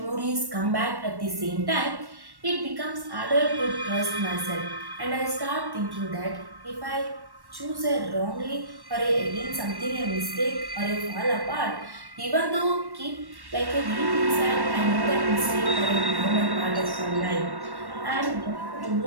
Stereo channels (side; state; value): left; late; 1.1 ms